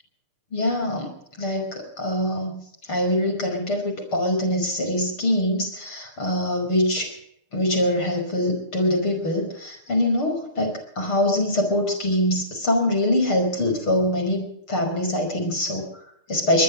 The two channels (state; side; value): late; right; 6.6 ms